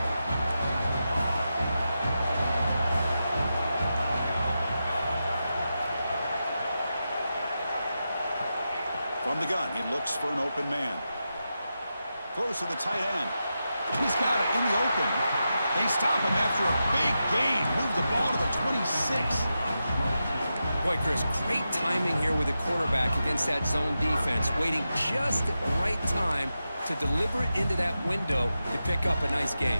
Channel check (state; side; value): inverted; both; correlation -0.89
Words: From the gun, he looks for an open man. Throws to the tight end. He's got it in the open. They stop him after a big gain. Move the ball to the 26. Boy, Chris, great timing here with the quarterback against that zone defense, waiting just at the right time to deliver it into that window to pick up a nice